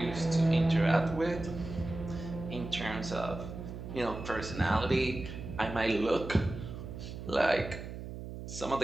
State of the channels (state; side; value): noise; right; hum, 9 dB below the sound